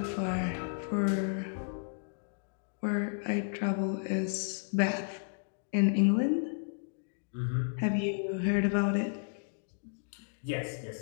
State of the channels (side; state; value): right; silent; digital silence